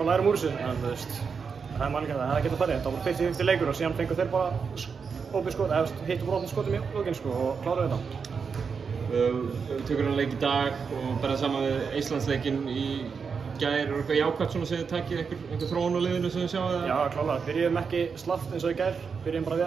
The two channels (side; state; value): left; quieter; 5.8 dB